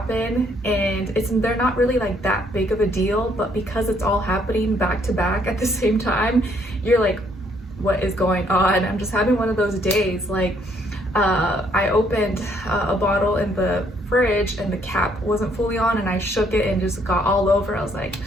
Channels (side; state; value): both; normal; correlation 0.68